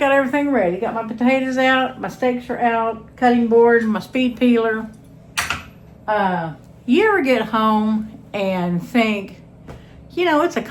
everything ready. Got my potatoes out, my steaks are out, cutting board, my speed peeler. You ever get home and think, you know, it's a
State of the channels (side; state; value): both; identical; correlation 1.00